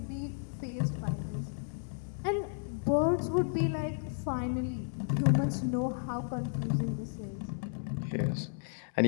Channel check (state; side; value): silent; right; digital silence